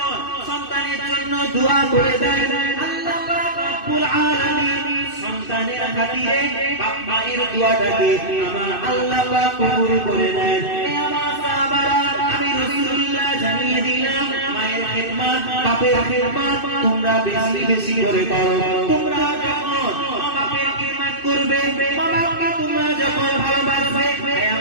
সন্তানের জন্য দোয়া করে দেয়, আল্লাহ পাক রব্বুল আলামিন সন্তানের খাতিরে বাবা-মায়ের দোয়াটাকে আমার আল্লাহ পাক কবুল করে নেন। হে আমার সাহাবারা, আমি রাসূলুল্লাহ জানিয়ে দিলাম, মায়ের খিদমত, বাপের খিদমত তোমরা বেশি বেশি করে করো। তোমরা যখন বাপের খিদমত করবে, বাবাকে তোমরা যখন ভালোবাসবে, হে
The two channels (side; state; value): right; late; 2.6 ms